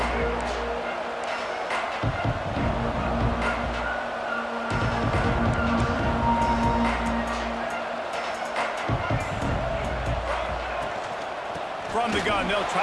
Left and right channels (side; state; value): both; identical; correlation 1.00